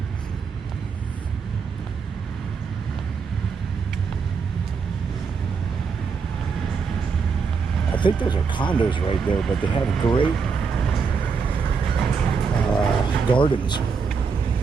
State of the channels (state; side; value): quieter; left; 5.5 dB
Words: I think those are condos right there, but they have great gardens